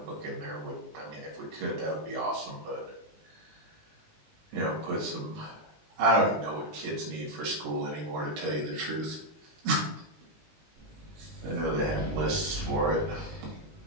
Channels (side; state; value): left; late; 19 ms